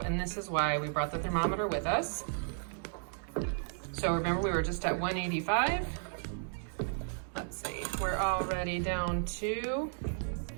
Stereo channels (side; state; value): left; silent; digital silence